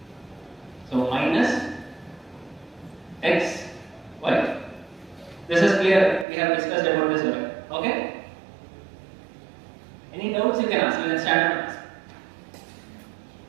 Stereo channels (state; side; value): drops out; left; at 6.2 s